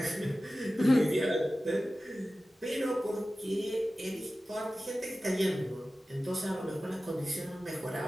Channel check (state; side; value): normal; both; correlation 0.95